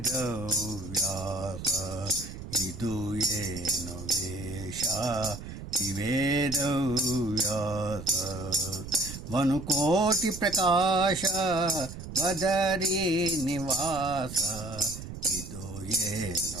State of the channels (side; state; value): right; noise; rumble, 10 dB below the sound